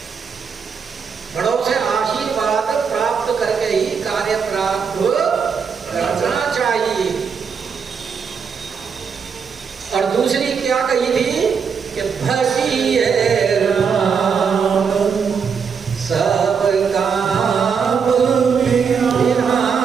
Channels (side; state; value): left; quieter; 6.3 dB